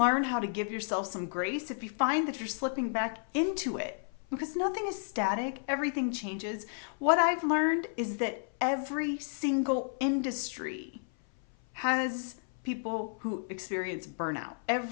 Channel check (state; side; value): silent; right; 56 dB below the other